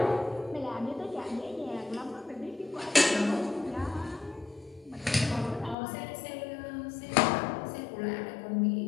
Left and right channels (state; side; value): drops out; right; at 5.8 s